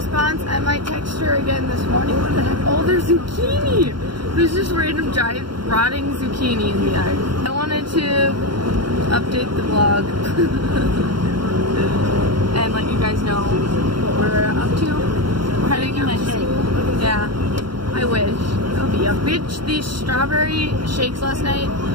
I might text her again this morning. What the heck? Oh, there's zucchini. There's just random giant rotting zucchini in the yard. I wanted to update the vlog and let you guys know what we're up to. We're heading out to school. Yeah, I wish. We had these strawberry shakes last night,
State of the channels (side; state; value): left; late; 0.73 ms